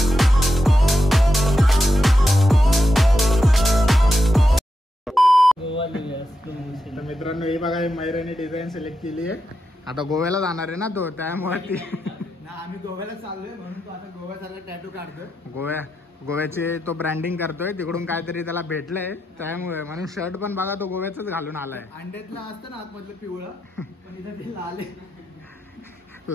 तर मित्रांनो, हे बघा मैराने डिझाईन सिलेक्ट केली आहे। आता गोव्याला जाणार आहे ना तो, त्यामुळे ती आम्ही गोव्याला चाललोय म्हणून तो आता गोव्यासारखा टॅटू काढतोय. गोव्याचे तो ब्रँडिंग करतोय. तिकडून काहीतरी त्याला भेटलंय त्यामुळे, म्हणून शर्ट पण बघा तो गोव्याच घालून आलाय. अंड्यातलं असतं ना आतमधलं पिवळं, पण इथं ते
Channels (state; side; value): normal; both; correlation 0.86